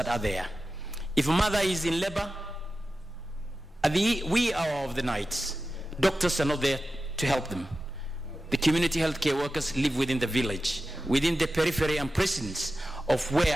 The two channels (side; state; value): both; normal; correlation 0.93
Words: are there. If a mother is in labor, at the wee hour of the night, doctors are not there to help them. The community healthcare workers live within the village, within the periphery and precincts of